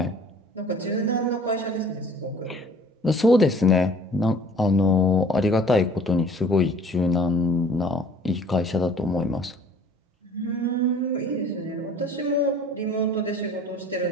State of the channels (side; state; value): both; normal; correlation 0.51